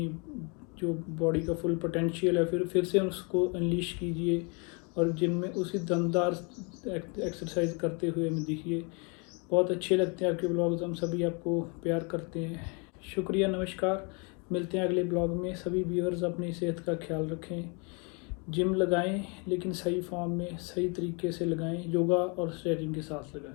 जो बॉडी का फुल पोटेंशियल है फिर से उसको अनलीश कीजिए, और जिम में उसी दमदार एक्सरसाइज करते हुए हमें दिखिए। बहुत अच्छे लगते हैं आपके ब्लॉग्स, हम सभी आपको प्यार करते हैं। शुक्रिया, नमस्कार। मिलते हैं अगले ब्लॉग में। सभी व्यूअर्स अपनी सेहत का ख्याल रखें, जिम लगाएं लेकिन सही फॉर्म में, सही तरीके से लगाएं, योगा और स्ट्रेचिंग के साथ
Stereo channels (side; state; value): right; quieter; 33.4 dB